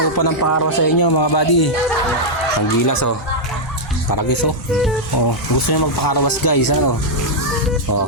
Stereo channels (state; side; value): normal; both; correlation -0.05